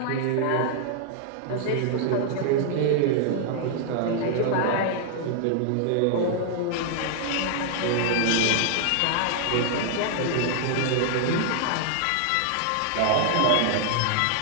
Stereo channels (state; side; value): different; both; correlation 0.00